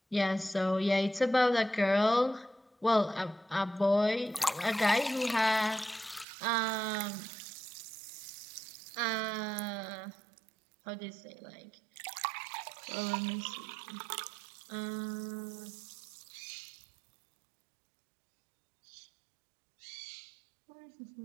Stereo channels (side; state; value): left; drops out; at 6.2 s